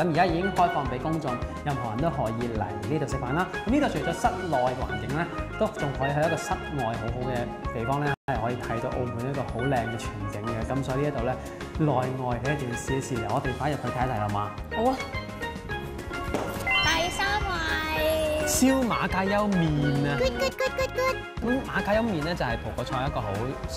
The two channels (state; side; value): identical; both; correlation 1.00